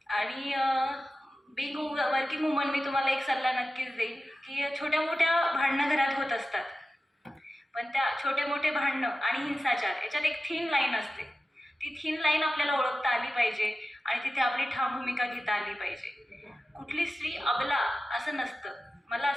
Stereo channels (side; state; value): both; normal; correlation 0.93